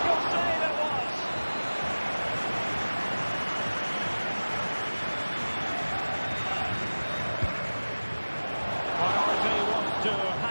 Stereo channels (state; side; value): inverted; both; correlation -1.00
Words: save it was! Priority was to